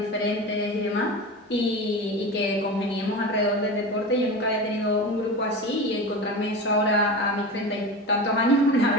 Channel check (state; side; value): normal; both; correlation 0.28